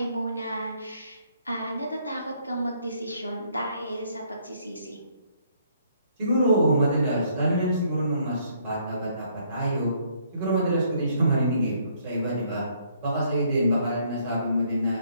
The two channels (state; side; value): inverted; both; correlation -0.66